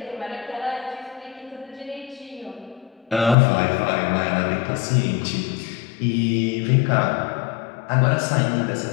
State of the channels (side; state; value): right; drops out; at 3.4 s